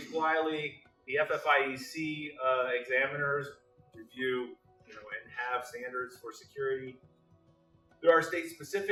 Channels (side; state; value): both; identical; correlation 1.00